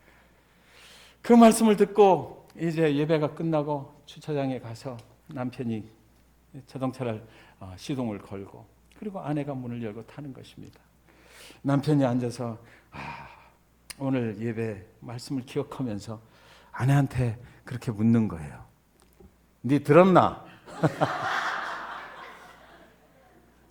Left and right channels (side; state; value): both; identical; correlation 1.00